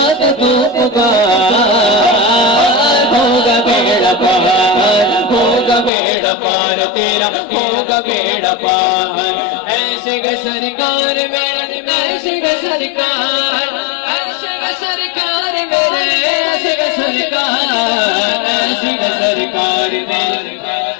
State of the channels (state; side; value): drops out; right; at 5.9 s